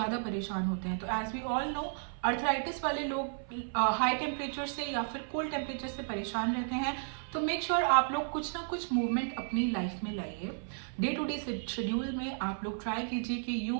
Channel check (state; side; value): silent; left; 55 dB below the other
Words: परेशान होते हैं। तो as we all know, arthritis वाले लोग हाई टेम्परेचर से या फिर कोल्ड टेम्परेचर से परेशान रहते हैं। तो मेक श्योर आप लोग कुछ ना कुछ मूवमेंट अपनी लाइफ में लाइए। डे टू डे शेड्यूल में आप लोग ट्राई कीजिए कि